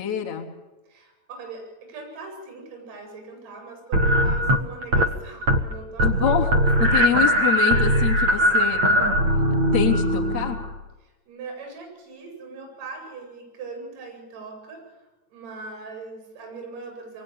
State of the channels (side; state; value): left; late; 8.8 ms